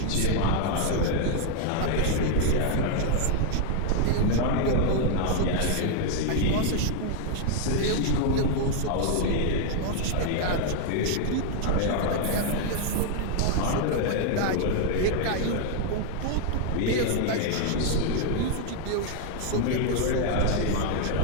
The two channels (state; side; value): different; both; correlation 0.00